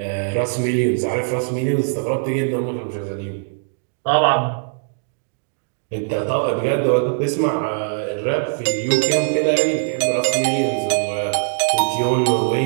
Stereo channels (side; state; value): left; silent; digital silence